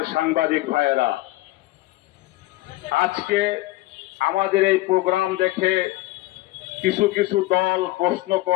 সাংবাদিক ভাইয়েরা, আজকে আমাদের এই প্রোগ্রাম দেখে কিছু কিছু দল প্রশ্ন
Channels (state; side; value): quieter; right; 18.4 dB